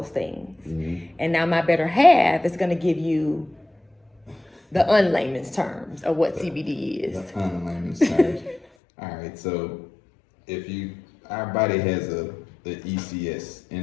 things. And now my better half is going to give you the unlayman's terms of what CBD is. The unlayman's terms. All right, so our body has the ECS,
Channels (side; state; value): right; drops out; at 8.7 s